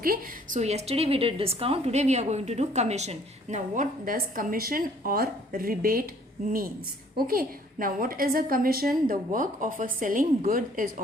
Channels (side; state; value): both; normal; correlation 0.59